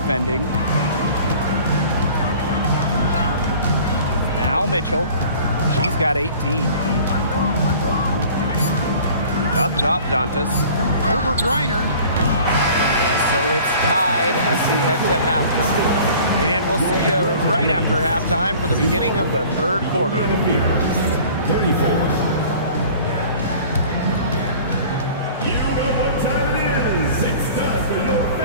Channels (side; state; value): both; inverted; correlation -0.46